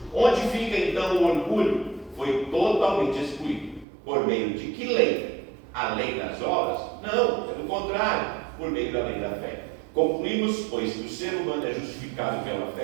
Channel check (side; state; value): left; drops out; at 3.9 s